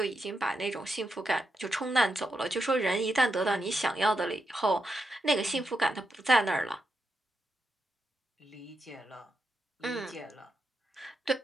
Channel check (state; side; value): normal; both; correlation 0.85